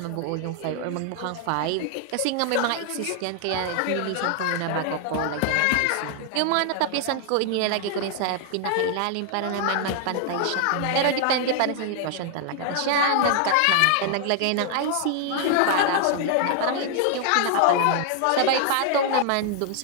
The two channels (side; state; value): both; different; correlation 0.00